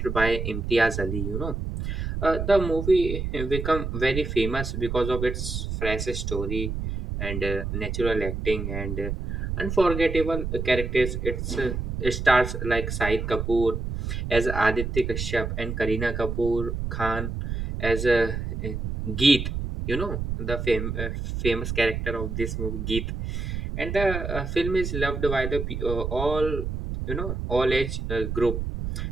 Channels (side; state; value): right; noise; rumble, 4 dB below the sound